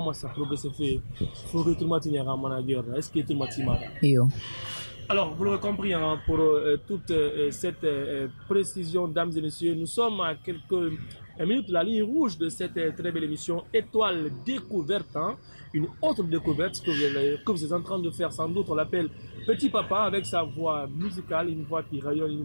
ça progresse fait. Faut que tout le monde ait un manager. Est-ce que tout le monde Yo. Alors, vous l'avez compris, hein, pour toute cette précision, dames et messieurs, nous sommes à quelques minutes de la ligne rouge de cette très belle émission Étoile Découverte, hein, une autre découverte que vous êtes en train de faire, sans doute, on l'appelle Petit Papa, avec sa voix musicale, une voix qui rayonne, une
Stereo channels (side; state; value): both; inverted; correlation -1.00